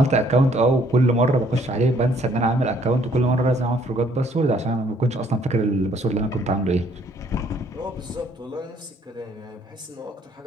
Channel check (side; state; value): both; normal; correlation 0.63